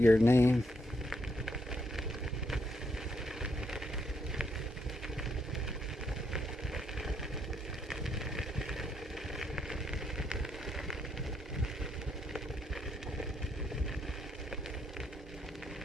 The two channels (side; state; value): both; normal; correlation 0.76